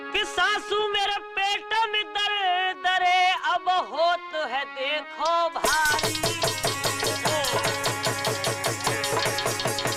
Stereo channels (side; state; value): both; identical; correlation 1.00